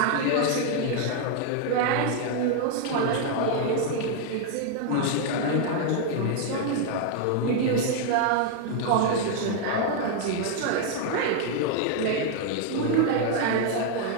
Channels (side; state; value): both; different; correlation 0.00